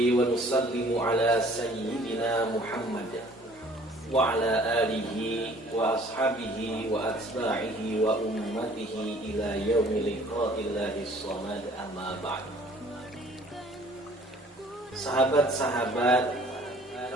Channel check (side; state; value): both; normal; correlation 0.54